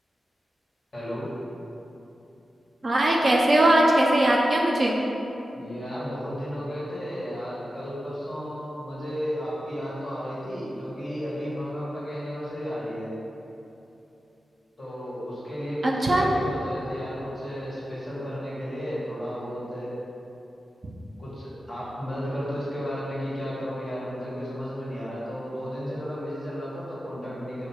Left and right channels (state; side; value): normal; both; correlation 0.92